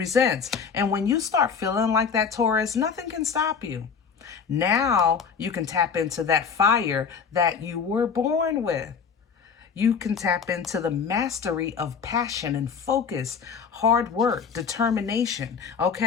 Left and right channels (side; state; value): right; quieter; 6.2 dB